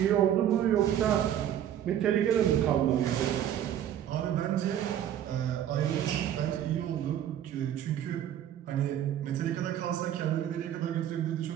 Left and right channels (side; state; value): left; quieter; 10.6 dB